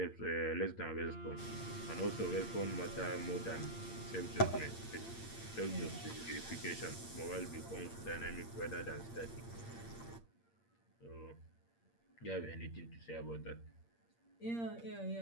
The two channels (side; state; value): right; late; 8.7 ms